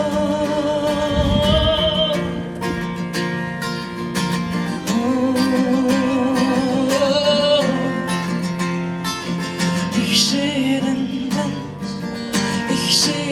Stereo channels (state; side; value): identical; both; correlation 1.00